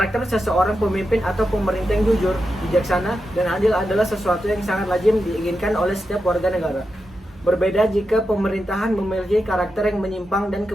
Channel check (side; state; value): both; normal; correlation 0.88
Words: seseorang pemimpin atau pemerintah yang jujur, bijaksana, dan adil adalah sesuatu yang sangat lazim diinginkan oleh setiap warga negara. Berbeda jika pemerintahan memiliki karakter yang menyimpang dan